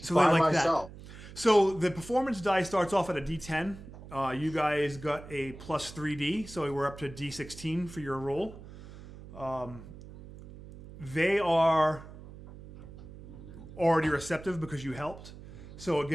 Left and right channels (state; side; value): noise; right; hum, 16 dB below the sound